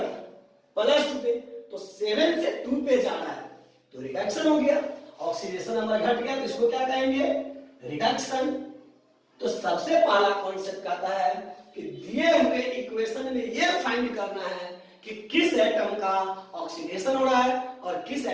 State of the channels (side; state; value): both; identical; correlation 1.00